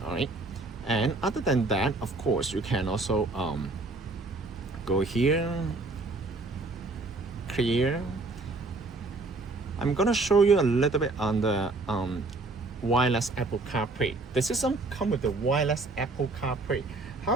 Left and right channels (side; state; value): left; quieter; 3.3 dB